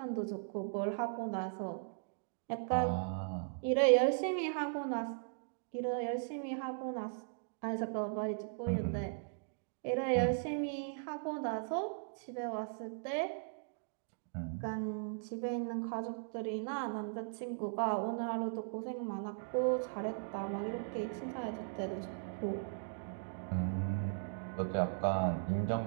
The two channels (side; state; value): left; silent; digital silence